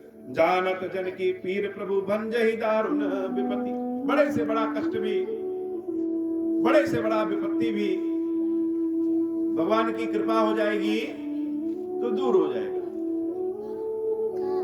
जानत जन की पीर प्रभु भंजहि दारुण विपत्ति। बड़े से बड़ा कष्ट भी, बड़े से बड़ा विपत्ति भी भगवान की कृपा हो जाएगी तो दूर हो जाएगा।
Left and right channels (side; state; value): both; identical; correlation 1.00